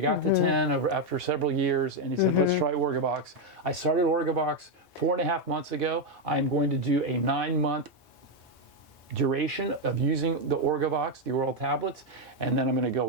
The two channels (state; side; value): normal; both; correlation 0.04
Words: got to 10 after several years. And he said, let's try Orgovyx. I started Orgovyx 4.5 months ago. I'm going to do a 9-month duration of using the Orgovyx, the oral tablets. And then I'm going to